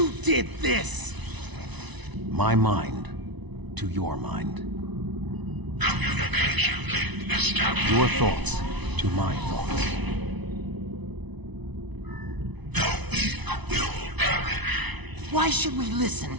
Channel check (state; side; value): late; left; 1.0 ms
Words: did this! My mind to your mind. Communication link established. Your thoughts to my thoughts. The weak will perish. Why should we listen